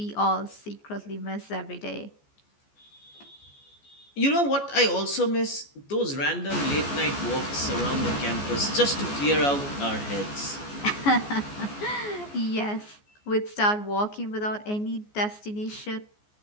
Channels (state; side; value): late; right; 14 ms